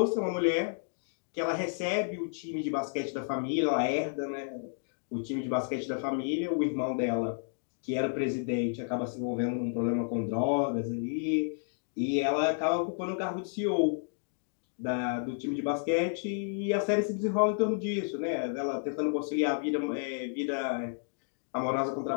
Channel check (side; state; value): right; silent; digital silence